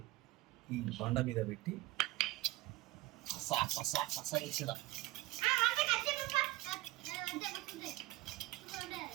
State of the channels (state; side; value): quieter; left; 19.4 dB